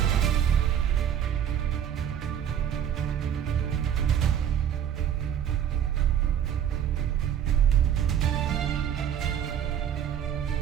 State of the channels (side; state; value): left; quieter; 9.3 dB